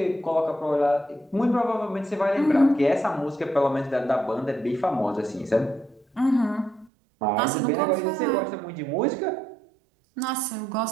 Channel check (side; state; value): left; drops out; at 6.9 s